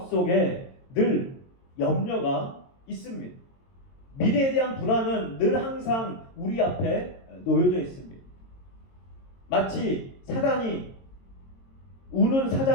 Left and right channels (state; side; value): late; right; 22 ms